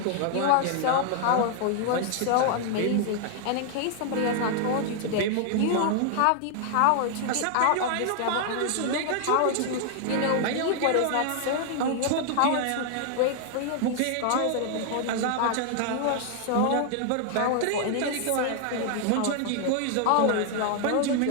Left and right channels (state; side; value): different; both; correlation 0.00